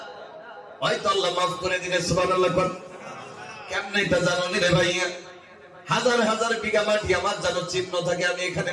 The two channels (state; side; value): identical; both; correlation 1.00